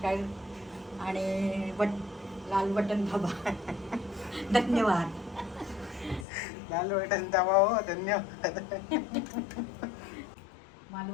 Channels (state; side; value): drops out; right; at 6.2 s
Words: आणि लाल बटन दाबा. धन्यवाद. लाल बटन दाबा हो. धन्यवाद.